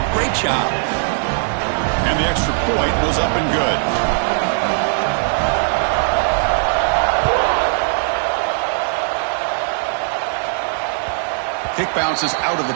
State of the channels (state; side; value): silent; left; 67 dB below the other